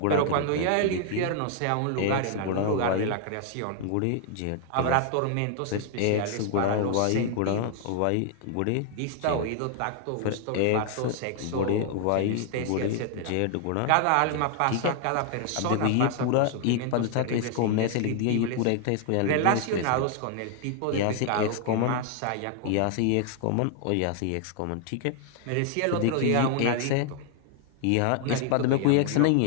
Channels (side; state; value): both; different; correlation 0.00